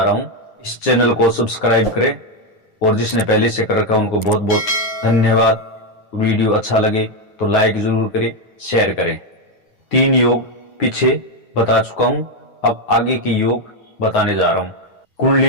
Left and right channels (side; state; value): right; late; 9.5 ms